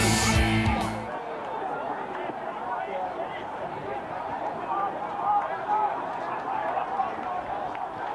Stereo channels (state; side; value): identical; both; correlation 1.00